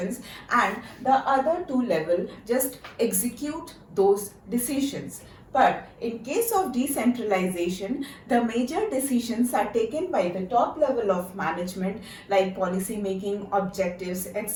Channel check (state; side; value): identical; both; correlation 1.00